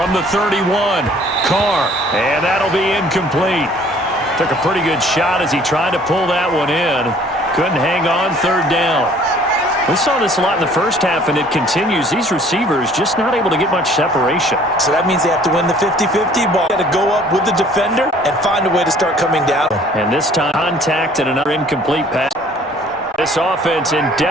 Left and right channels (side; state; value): both; normal; correlation 0.55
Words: the 31, Carr, and that'll be incomplete. Took a pretty good shot as he tried to pull that one in. Couldn't hang on, 3rd down. We saw this a lot in the first half, and it continues. These receivers just not able to get much separation. So that means they have to win the 50-50 ball. Got to go up with the defender and find a way to start coming down. And this time, contact and another incomplete pass. This offense in